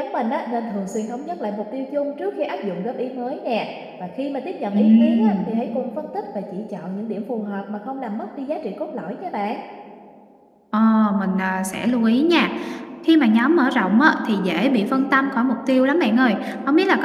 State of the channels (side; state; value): both; identical; correlation 1.00